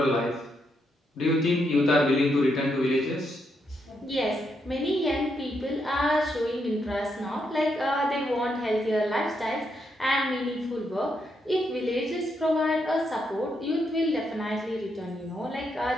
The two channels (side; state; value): both; normal; correlation 0.79